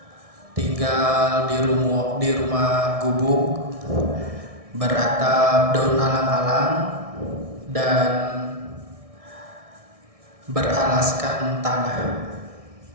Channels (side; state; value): left; late; 1.6 ms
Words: tinggal di rumah gubuk beratap daun alang-alang dan beralaskan tanah.